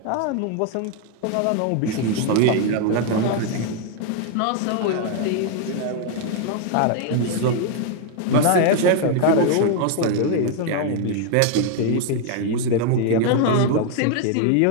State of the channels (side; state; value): both; different; correlation 0.00